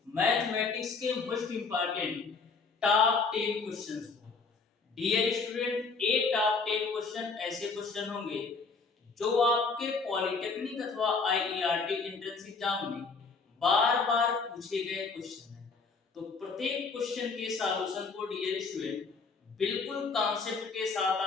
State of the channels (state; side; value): quieter; right; 4.5 dB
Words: मैथमेटिक्स के मोस्ट इंपॉर्टेंट टॉप 10 क्वेश्चंस को। डियर स्टूडेंट, ये टॉप 10 क्वेश्चन ऐसे क्वेश्चन होंगे जो आपके पॉलिटेक्निक अथवा आईईआरटी एंट्रेंस एग्जाम में बार बार पूछे गए क्वेश्चन हैं। तो प्रत्येक क्वेश्चन के सॉल्यूशन को डियर स्टूडेंट बिल्कुल कॉन्सेप्ट के